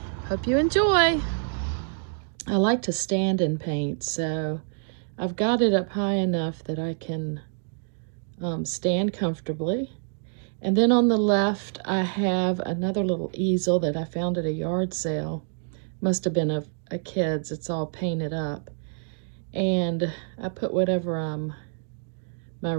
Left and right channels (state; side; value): silent; left; 60 dB below the other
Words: hope you enjoy. I like to stand and paint, so I've got it up high enough that I can stand comfortably. And then on the left I have another little easel that I found at a yard sale. Must have been a kid's. It's all painted up. And I put whatever my